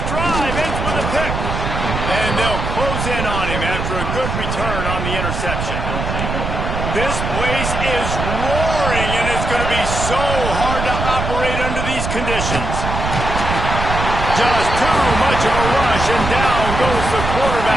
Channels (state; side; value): noise; right; rumble, 3 dB below the sound